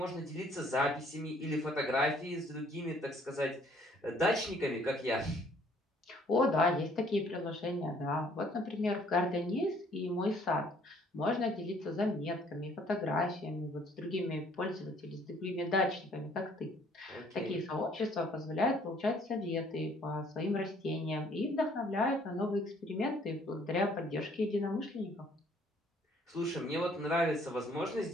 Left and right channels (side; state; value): both; normal; correlation 0.61